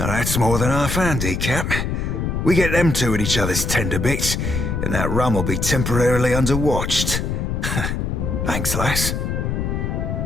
that's more than half handy, Cap. We get them two at each other's tender bits, and that rum will be temporarily underwatched. Thanks, lass.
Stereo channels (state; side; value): noise; left; rumble, 1 dB below the sound